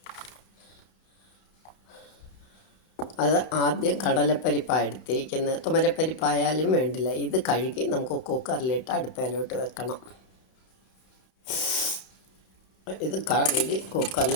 അത് ആദ്യം കടലപ്പരിപ്പാണ് എടുത്തിരിക്കുന്നത്. തുമരപ്പരിപ്പായാലും വേണ്ടില്ല. ഇത് കഴുകി നമുക്ക് കുക്കറിലിട്ട് അടുപ്പയിലോട്ട് വെക്കണം. ഇത് കഴുകി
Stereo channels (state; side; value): late; right; 32 ms